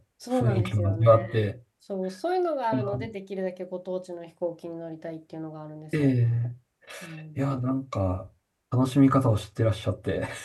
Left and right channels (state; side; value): identical; both; correlation 1.00